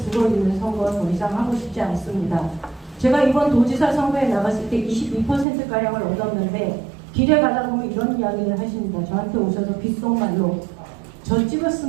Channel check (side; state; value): left; drops out; at 5.5 s